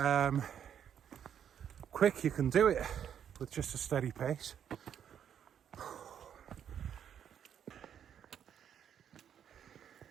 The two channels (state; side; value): quieter; left; 8.9 dB